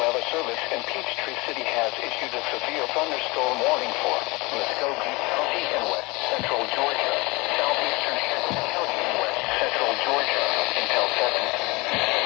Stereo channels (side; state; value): right; quieter; 24.9 dB